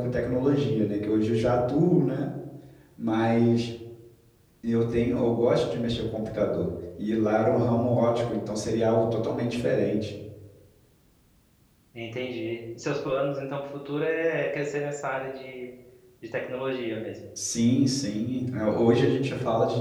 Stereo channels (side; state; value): both; identical; correlation 1.00